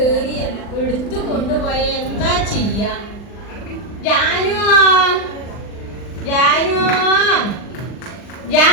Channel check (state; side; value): late; right; 39 ms